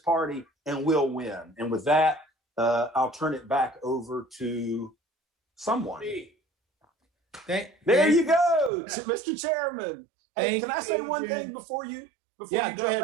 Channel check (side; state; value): left; drops out; at 8.7 s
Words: and we'll win. And with that, I'll turn it back over to someone. There you go, Mr. Chairman. Hey, can I say one thing before you jump